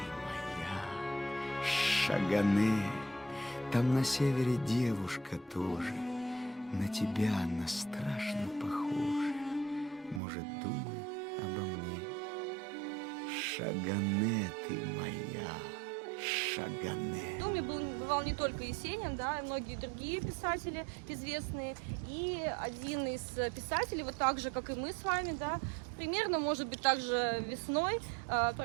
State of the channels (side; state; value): left; drops out; at 10.2 s